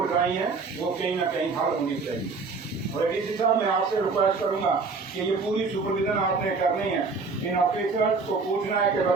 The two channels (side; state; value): left; quieter; 4.4 dB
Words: कराई हैं वो कहीं ना कहीं हल होनी चाहिए। और डीसी साहब मैं आपसे रिक्वेस्ट करूंगा कि ये पूरी सुपरविजन आपने करनी है। इन ऑफिसर्स को पूछना है कि